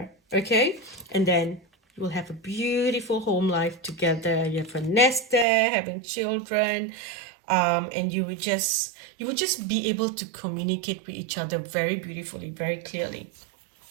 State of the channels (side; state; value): left; drops out; at 5.5 s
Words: okay? And then you will have a beautiful home life together. You have a nest there, having children, and you would just be able to communicate with each other very beautifully, very clearly.